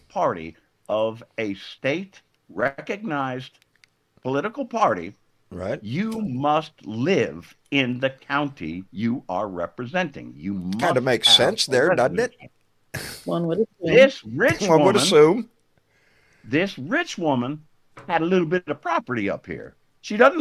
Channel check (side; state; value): both; identical; correlation 1.00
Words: party of a state recognized political party, Right? you must live in the county you are representing. You must Kind of makes have sense a there, doesn't it? residency. One would assume. This rich One would woman, assume. this rich woman had a little bit of property up here. She doesn't